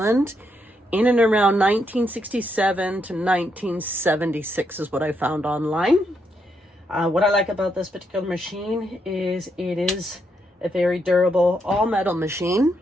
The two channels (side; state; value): both; normal; correlation 0.78